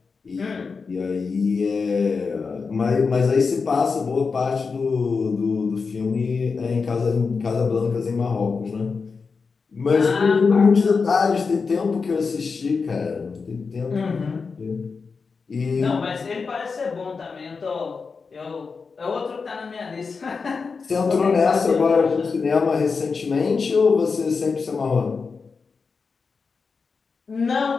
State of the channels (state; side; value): quieter; right; 4.9 dB